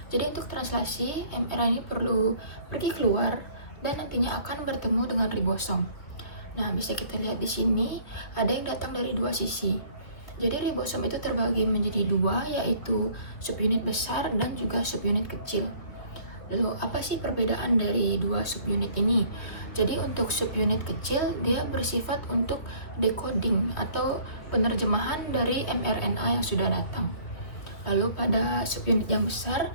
Jadi untuk translasi, mRNA ini perlu pergi keluar dan nantinya akan bertemu dengan ribosom. Nah, bisa kita lihat di sini ada yang datang dari dua sisi. Jadi ribosom itu terbagi menjadi dua, yaitu subunit besar dan juga subunit kecil. Lalu apa sih perbedaan dari dua subunit ini? Jadi untuk subunit kecil dia bersifat untuk decoding atau penerjemahan dari mRNA yang sudah datang. Lalu pada subunit yang besar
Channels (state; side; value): late; right; 2.9 ms